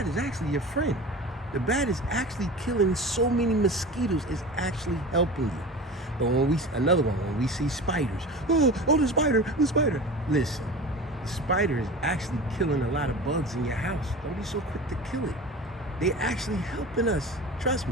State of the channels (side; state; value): both; normal; correlation 0.34